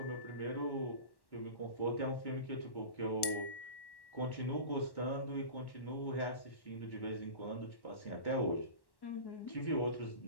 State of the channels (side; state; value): right; late; 1.1 ms